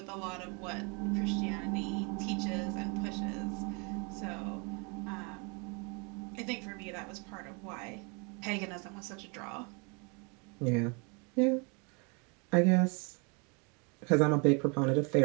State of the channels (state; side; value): quieter; left; 32.7 dB